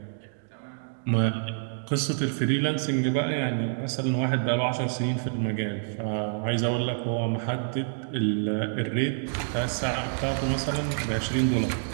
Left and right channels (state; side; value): silent; left; digital silence